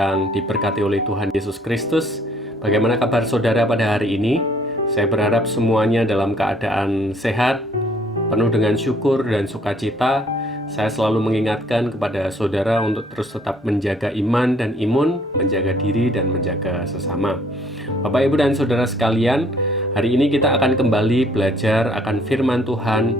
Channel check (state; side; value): normal; both; correlation 0.61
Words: diberkati oleh Tuhan Yesus Kristus. Bagaimana kabar saudara pada hari ini? Saya berharap semuanya dalam keadaan sehat, penuh dengan syukur dan sukacita. Saya selalu mengingatkan kepada saudara untuk terus tetap menjaga iman dan imun, menjaga diri dan menjaga sesama. Bapak, Ibu, dan saudara sekalian, hari ini kita akan kembali belajar akan firman Tuhan